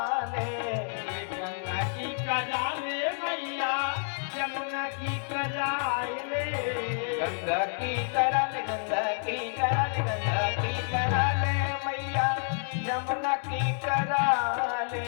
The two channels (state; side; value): silent; right; digital silence